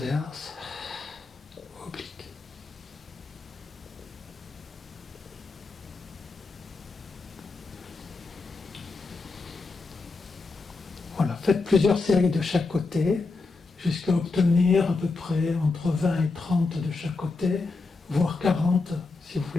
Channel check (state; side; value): quieter; right; 3.9 dB